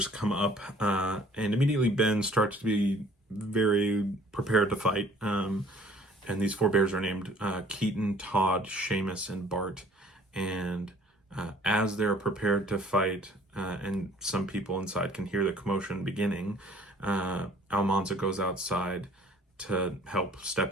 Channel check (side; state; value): both; normal; correlation 0.54